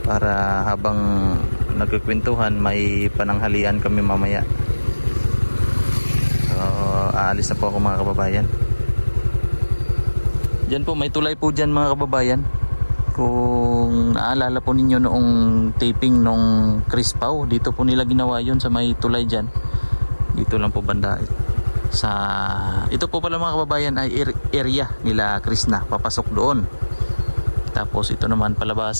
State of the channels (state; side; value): inverted; both; correlation -1.00